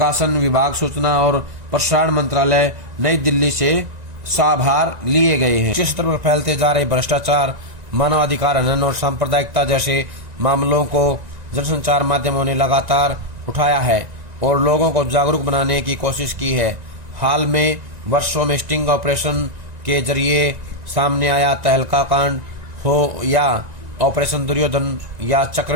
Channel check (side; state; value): left; late; 1.9 ms